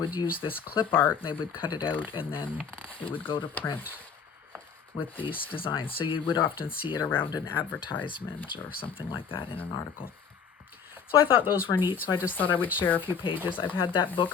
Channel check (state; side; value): quieter; right; 6.5 dB